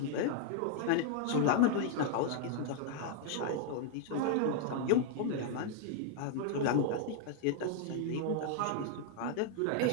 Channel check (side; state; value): both; different; correlation 0.00